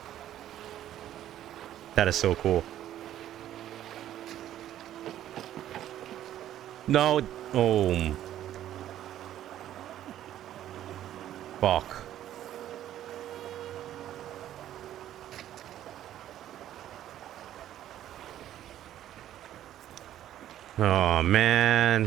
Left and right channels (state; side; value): quieter; left; 12.0 dB